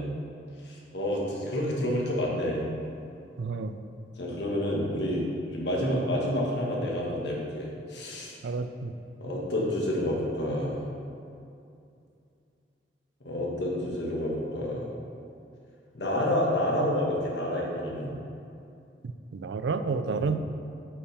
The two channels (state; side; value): normal; both; correlation 0.38